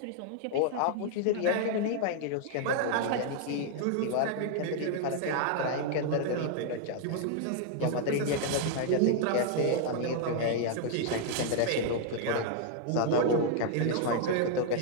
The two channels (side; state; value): both; different; correlation 0.00